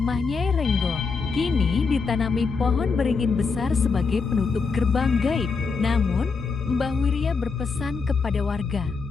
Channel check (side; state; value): right; quieter; 4.8 dB